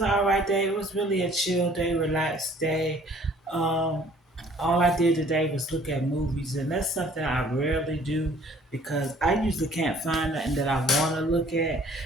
an alright day. It was really a chill day, relaxed day. Um, all I did today was look at movies, and that's something I rarely do because I usually can't find nothing that I want to look at.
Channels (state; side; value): normal; both; correlation 0.55